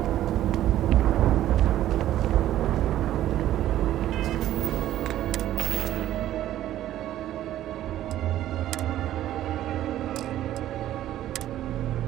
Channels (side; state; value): left; quieter; 12.9 dB